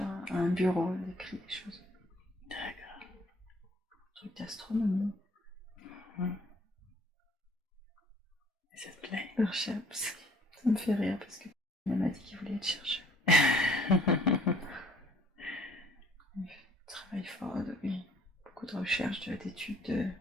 un bureau, j'écris des choses. D'accord. Un truc d'astronomie. Et ça te plaît? Earthships. Ça me fait rire parce que elle m'a dit qu'il voulait être chercheur. Il travaille fort, oui. Beaucoup de recherches, d'études,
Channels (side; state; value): both; normal; correlation 0.59